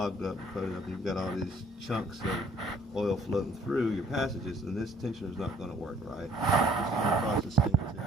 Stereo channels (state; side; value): normal; both; correlation 0.60